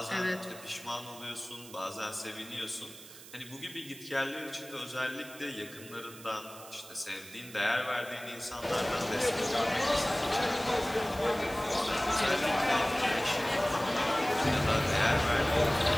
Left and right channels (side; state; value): right; noise; hiss, 17 dB below the sound